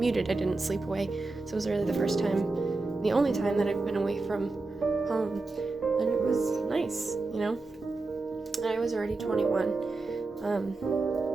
I didn't sleep away. So it was really the first time, the only time that I've been away from home, and it was nice. I was already 21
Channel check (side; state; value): left; quieter; 3.5 dB